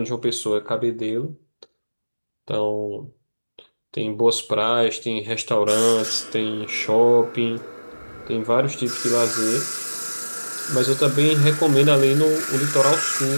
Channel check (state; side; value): inverted; both; correlation -1.00